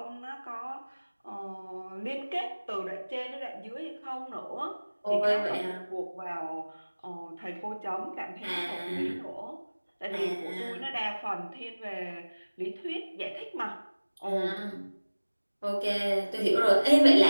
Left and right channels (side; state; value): both; inverted; correlation -1.00